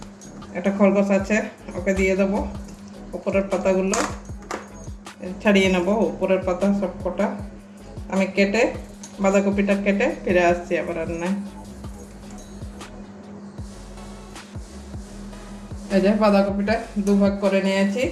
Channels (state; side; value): identical; both; correlation 1.00